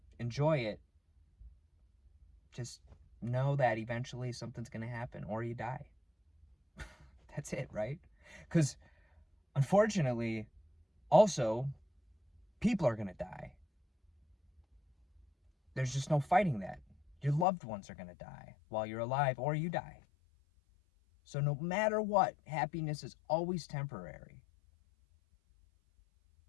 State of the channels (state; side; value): drops out; right; at 17.4 s